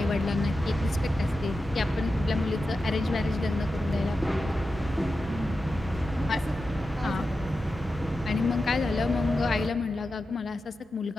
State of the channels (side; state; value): both; normal; correlation 0.91